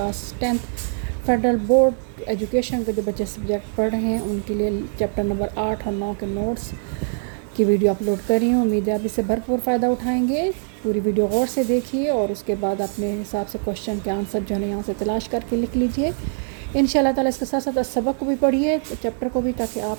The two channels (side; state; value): left; silent; 59 dB below the other